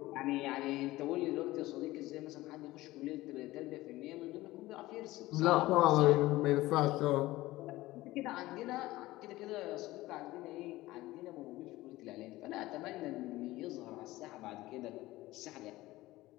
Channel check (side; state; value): right; quieter; 17.9 dB